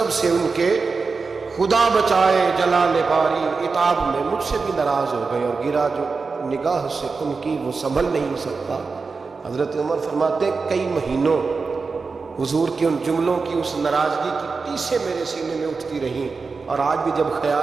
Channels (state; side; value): quieter; left; 4.5 dB